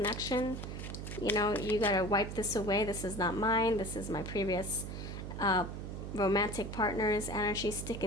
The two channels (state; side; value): noise; right; hum, 7 dB below the sound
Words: You know, you gotta wipe this away. This is not mine. This is my previous romantic partner's energy